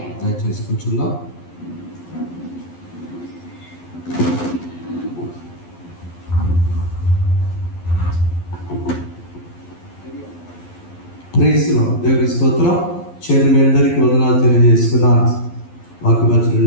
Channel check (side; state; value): right; late; 11 ms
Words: దయచేసి కూర్చుందాం. ప్రైజ్లో దేవుని స్తోత్రం. చేరి మీ అందరికీ వందనాలు తెలియజేస్తున్నాను.